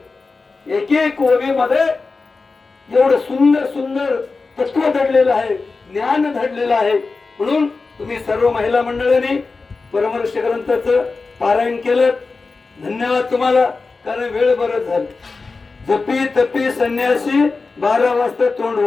एक एक ओवीमध्ये एवढं सुंदर सुंदर तत्व दडलेलं आहे, ज्ञान दडलेलं आहे. म्हणून तुम्ही सर्व महिला मंडळांनी परमर्ष ग्रंथाचं पारायण केलं. धन्यवाद तुम्हाला, कारण वेळ बरंच झालं. जपी तपी संन्यासी 12 वाजता तोंड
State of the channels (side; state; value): right; quieter; 4.1 dB